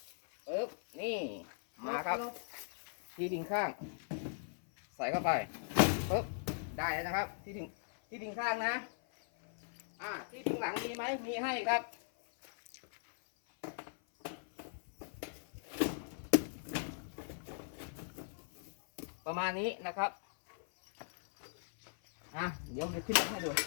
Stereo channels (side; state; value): right; silent; 52 dB below the other